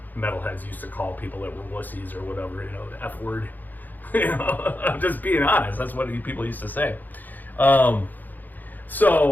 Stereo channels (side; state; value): right; late; 0.085 ms